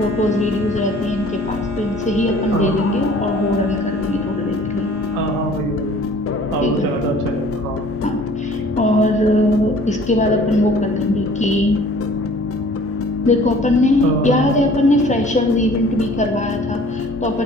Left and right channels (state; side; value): normal; both; correlation 0.51